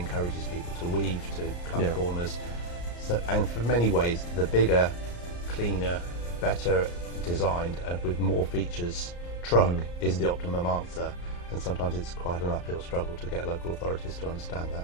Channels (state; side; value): late; right; 34 ms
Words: people to weave, to cut corners. So, and for many ways, the bigger, cleaner, better designed and with more features truck is the optimum answer, and sometimes it's quite an uphill struggle to get local authorities to understand